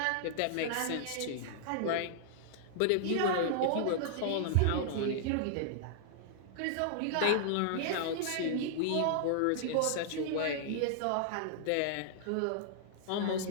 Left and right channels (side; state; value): both; different; correlation -0.01